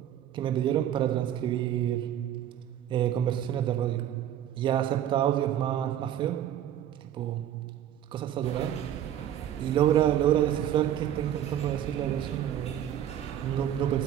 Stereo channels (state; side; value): quieter; left; 10.9 dB